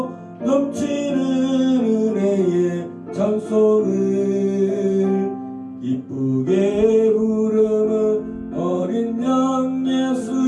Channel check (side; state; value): both; identical; correlation 1.00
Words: 넘치는 은혜의 찬송을 기쁘게 부르는 어린 양